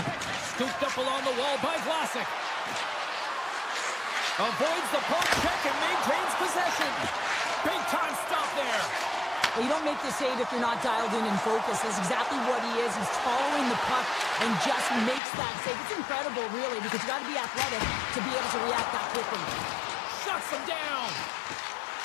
Scooped up along the wall by Vlasic. Avoids the poke check and maintains possession. Big time stop there. Well, you don't make the save if you're not dialed in and focused. That's exactly what he is. He's following the puck and just makes that save. It's incredible, really, because you got to be athletic to be able to react that quickly. Shuts him down.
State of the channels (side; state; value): right; drops out; at 15.2 s